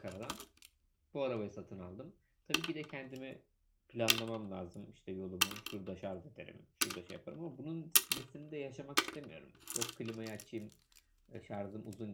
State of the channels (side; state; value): both; identical; correlation 1.00